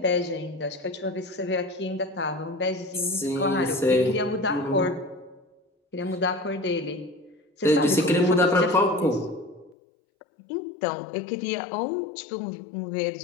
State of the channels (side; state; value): right; drops out; at 9.8 s